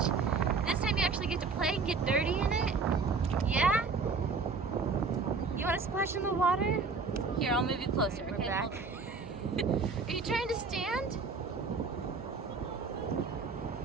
This time you actually get to play and get dirty in it? Yeah? You want to splash in the water? Here, I'll move you closer, okay? We're back. Are you trying to stand?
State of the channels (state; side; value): quieter; left; 4.5 dB